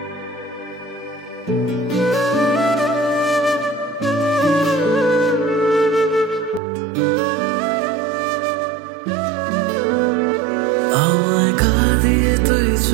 আমায় কাঁদিয়ে তুই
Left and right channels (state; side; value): drops out; left; at 6.6 s